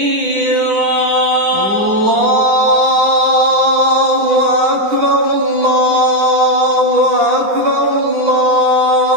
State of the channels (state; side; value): late; left; 9.9 ms